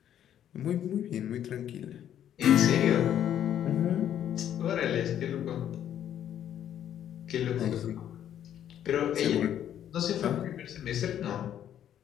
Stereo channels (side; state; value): right; quieter; 10.4 dB